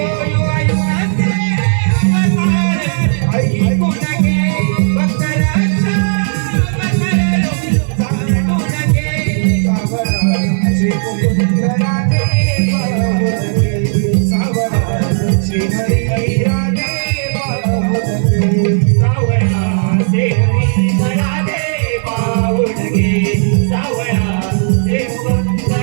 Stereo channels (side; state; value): left; silent; digital silence